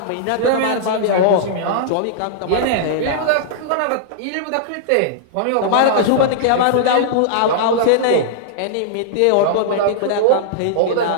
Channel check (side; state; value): both; different; correlation -0.02